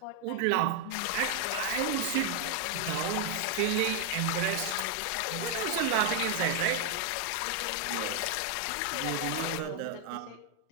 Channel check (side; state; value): both; different; correlation 0.00